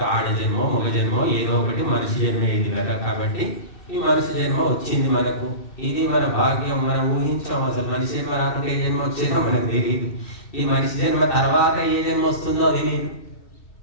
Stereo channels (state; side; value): late; right; 2.1 ms